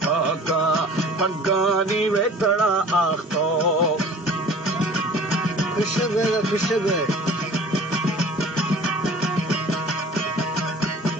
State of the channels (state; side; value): normal; both; correlation 0.45